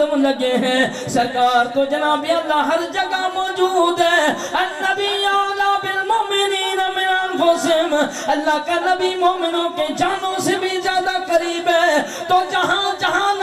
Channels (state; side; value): identical; both; correlation 1.00